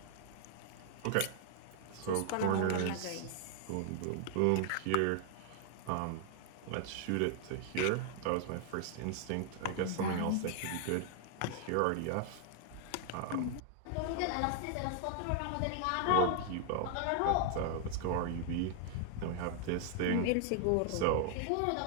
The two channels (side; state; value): both; different; correlation 0.00